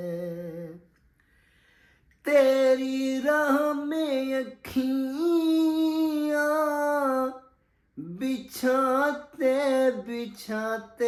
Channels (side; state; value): both; identical; correlation 1.00